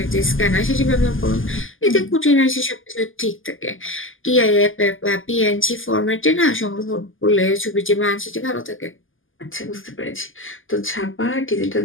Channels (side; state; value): right; late; 0.58 ms